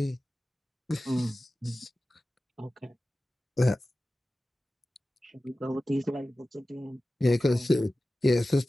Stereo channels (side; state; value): both; normal; correlation 0.95